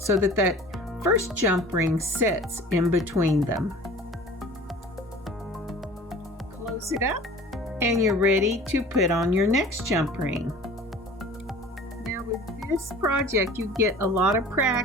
that that first jump ring sits in between them. Close it up and you're ready to put on your next jump ring. Now with this project, you get a lot of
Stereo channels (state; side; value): normal; both; correlation 0.44